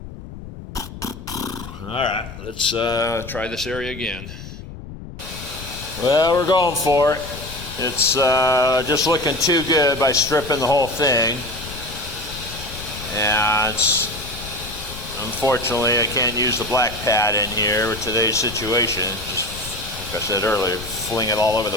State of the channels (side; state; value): left; noise; rumble, 13 dB below the sound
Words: All right, let's try this area again. Well, we're going for it. It's just looking too good by stripping the whole thing. And unfortunately, I can't use the black pad in here with today's situation. Just like I said earlier, fling it all over the